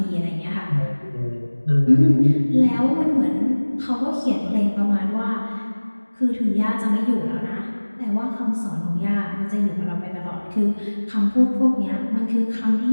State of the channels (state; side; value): inverted; both; correlation -1.00